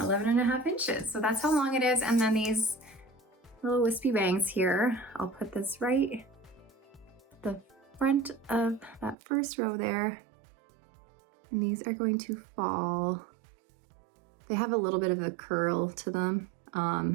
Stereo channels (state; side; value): drops out; left; at 9.2 s